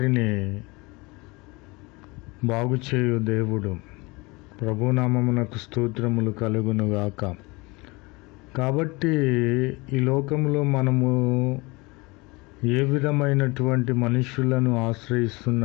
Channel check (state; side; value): quieter; right; 25.0 dB